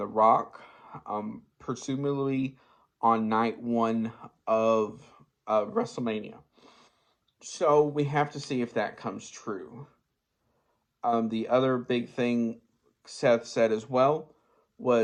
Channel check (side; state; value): both; identical; correlation 1.00